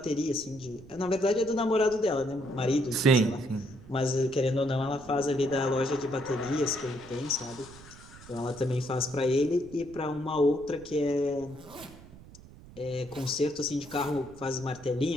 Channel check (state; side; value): noise; right; rumble, 19 dB below the sound